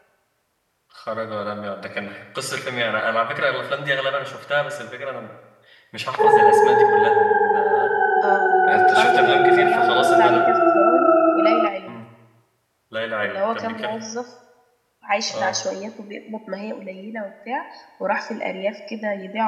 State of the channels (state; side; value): identical; both; correlation 1.00